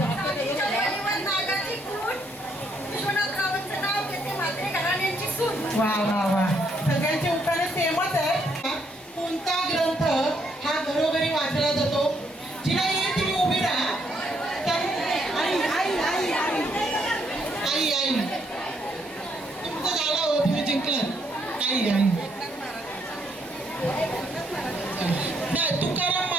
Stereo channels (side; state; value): both; normal; correlation 0.72